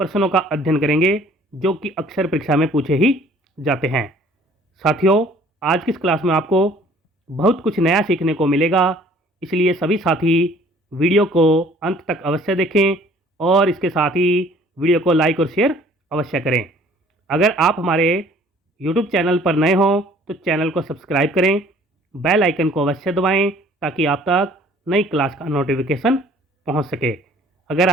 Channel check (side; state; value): both; normal; correlation 0.54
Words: का अध्ययन करेंगे जो कि अक्सर परीक्षा में पूछे ही जाते हैं। साथियों, आज की इस क्लास में आपको बहुत कुछ नया सीखने को मिलेगा, इसलिए सभी साथी वीडियो को अंत तक अवश्य देखें और इसके साथ ही वीडियो को लाइक और शेयर अवश्य करें। अगर आप हमारे YouTube चैनल पर नए हों तो चैनल को सब्सक्राइब करें, बेल आइकन को अवश्य दबाएं ताकि आप तक नई क्लास का नोटिफिकेशन पहुंच सके। अगर